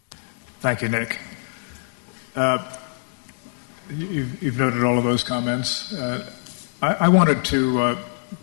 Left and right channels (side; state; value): right; silent; digital silence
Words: Thank you, Nick. You've noted all of those comments. I wanted to